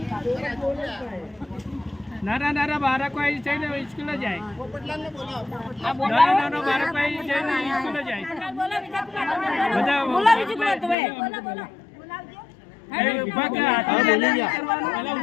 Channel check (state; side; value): drops out; right; at 11.0 s